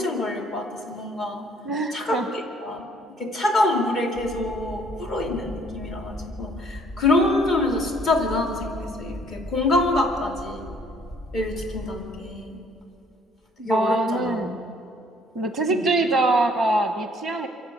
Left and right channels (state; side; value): normal; both; correlation 0.61